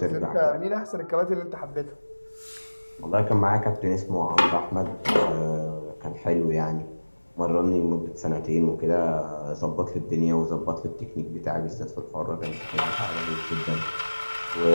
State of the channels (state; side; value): inverted; both; correlation -1.00